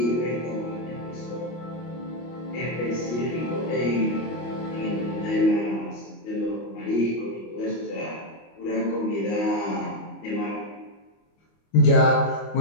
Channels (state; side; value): late; right; 25 ms